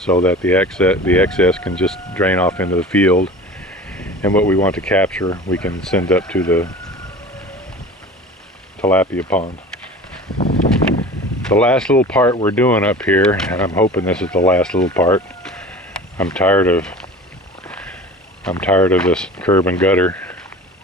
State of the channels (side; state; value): both; normal; correlation 0.38